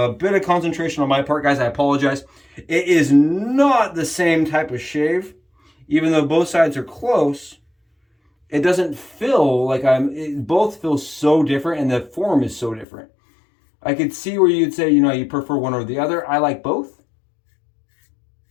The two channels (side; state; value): right; drops out; at 12.9 s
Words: bit of concentration on my part, guys. I apologize. It is not the same type of shave. Even though both sides are close, it doesn't feel like both feel so different, and the form is so different. I could see where you'd say, you know, you prefer one or the other. I like both.